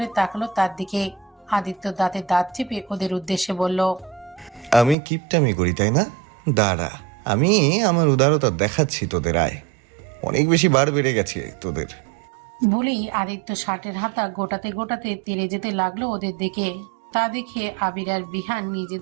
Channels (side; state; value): left; drops out; at 5.0 s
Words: তাকালো তার দিকে। আদিত্য দাঁতে দাঁত চেপে ওদের উদ্দেশ্যে বলল, আমি কিপটামি করি তাই না? দাঁড়া, আমি আমার উদারতা দেখাচ্ছি তোদের। আয়, অনেক বেশি বার বেড়ে গেছে তোদের। বলেই আদিত্য শার্টের হাতা গোটাতে গোটাতে তেড়ে যেতে লাগলো ওদের দিকে। তা দেখে আবির আর বিহান